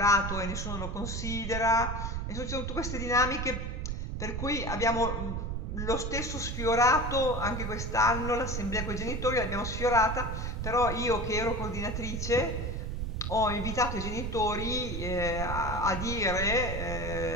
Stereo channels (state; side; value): noise; right; rumble, 3 dB below the sound